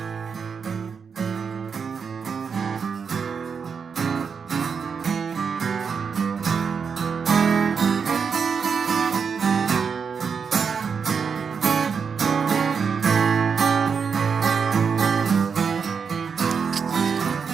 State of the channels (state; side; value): quieter; left; 6.1 dB